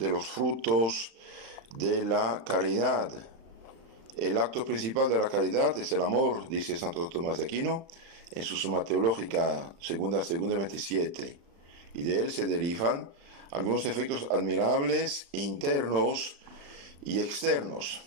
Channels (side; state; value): left; late; 35 ms